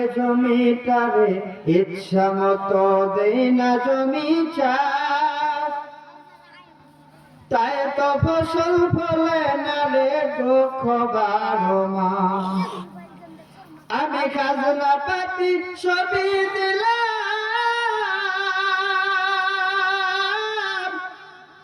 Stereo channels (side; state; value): both; identical; correlation 1.00